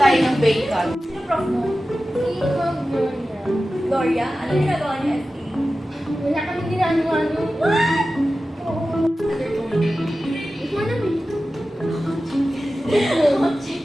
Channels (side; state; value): both; normal; correlation 0.94